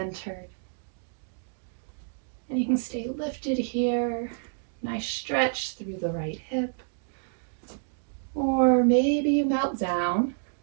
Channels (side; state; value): left; silent; digital silence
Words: And you can stay lifted here. Nice stretch through the right hip. Or maybe you melt down.